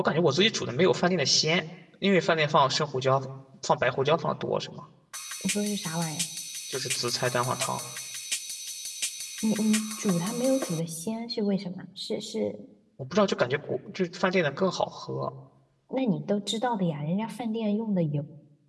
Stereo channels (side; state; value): both; identical; correlation 1.00